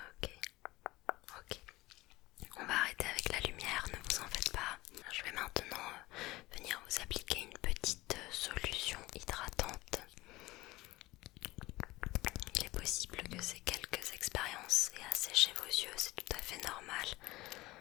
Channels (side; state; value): right; quieter; 19.5 dB